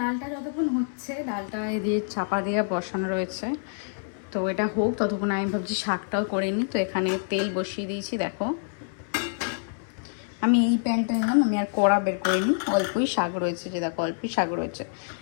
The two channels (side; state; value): right; silent; 60 dB below the other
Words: যতক্ষণ হচ্ছে, ডালটা দিয়ে চাপা দিয়ে বসানো রয়েছে, তো এটা হোক ততক্ষণ আমি ভাবছি শাকটাও করে নিই। তো এখানে তেল বসিয়ে দিয়েছি। দেখো আমি এই প্যানটা নিলাম, আমি আর কড়া বের করিনি, অল্পই শাক রয়েছে, যে দেখো অল্পই শাক রয়েছে,